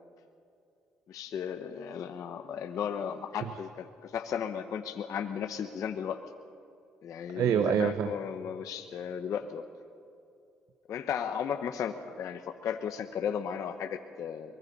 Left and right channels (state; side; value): normal; both; correlation 0.56